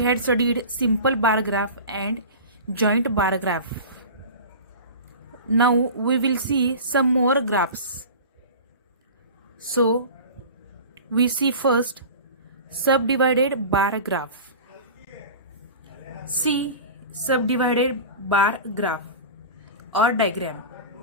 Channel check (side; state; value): both; inverted; correlation -0.34